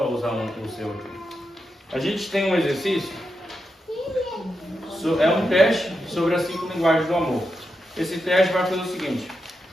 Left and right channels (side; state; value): both; normal; correlation 0.87